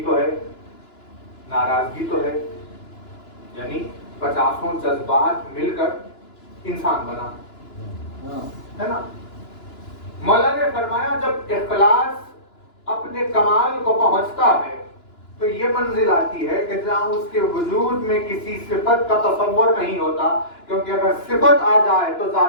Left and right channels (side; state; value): right; late; 2.9 ms